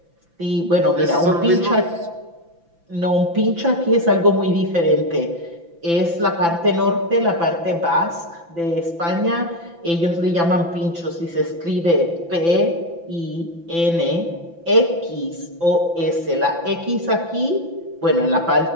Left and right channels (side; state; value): left; late; 5.9 ms